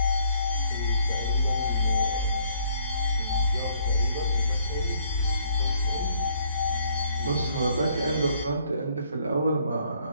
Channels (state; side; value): inverted; both; correlation -0.65